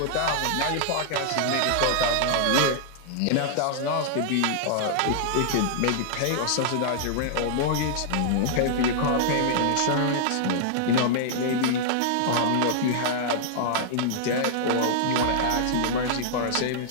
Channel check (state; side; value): different; both; correlation -0.01